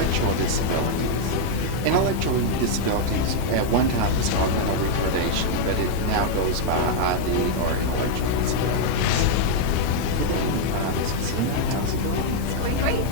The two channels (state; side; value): different; both; correlation -0.01